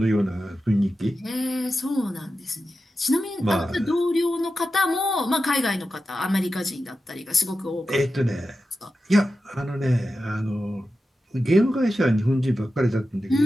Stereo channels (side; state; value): both; normal; correlation 0.92